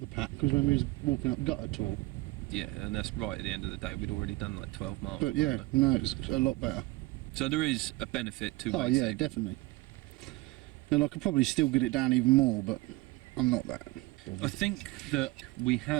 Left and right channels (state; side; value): quieter; left; 20.9 dB